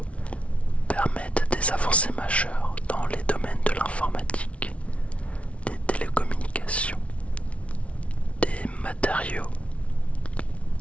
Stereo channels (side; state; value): right; late; 0.063 ms